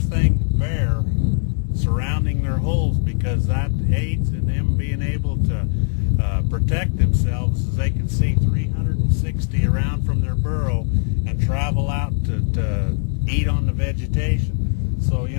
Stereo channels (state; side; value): silent; right; 65 dB below the other